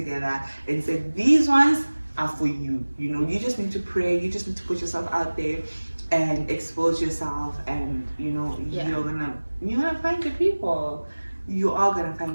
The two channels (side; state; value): both; inverted; correlation -1.00